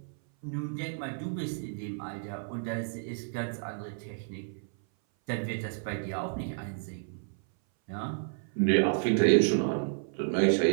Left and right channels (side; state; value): left; silent; 57 dB below the other